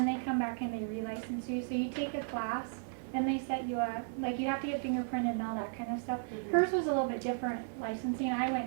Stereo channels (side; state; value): left; silent; digital silence